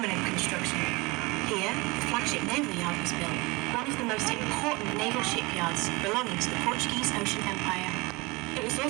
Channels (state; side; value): quieter; left; 24.8 dB